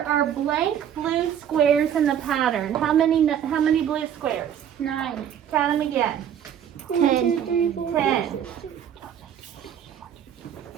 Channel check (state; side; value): quieter; left; 9.3 dB